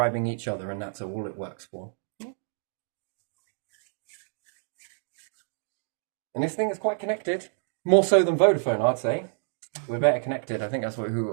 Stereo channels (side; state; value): left; silent; digital silence